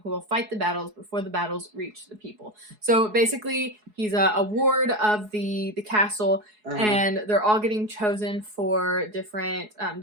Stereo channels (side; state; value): left; late; 4.7 ms